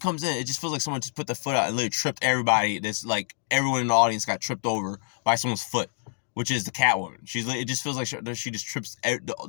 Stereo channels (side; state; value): right; silent; 60 dB below the other